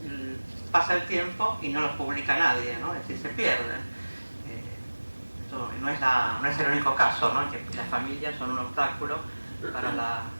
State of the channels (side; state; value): both; inverted; correlation -1.00